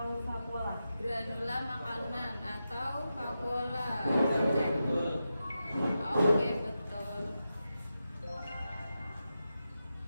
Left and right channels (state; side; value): inverted; both; correlation -0.90